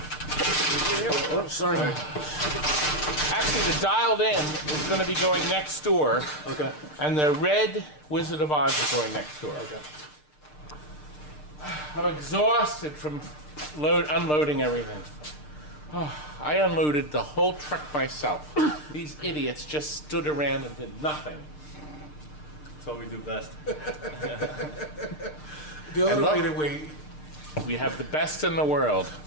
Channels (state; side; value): late; right; 6.6 ms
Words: Oh, sorry. Actually, the dialed in is going to be going next door. Okay. And the red Wizard of Oz is going next door. Okay. I'm exhausted from unloading everything. Oh, I unloaded the whole truck myself. These idiots just stood around and did nothing. That's what we do best. The And other look, way to wait. We have the best in the world.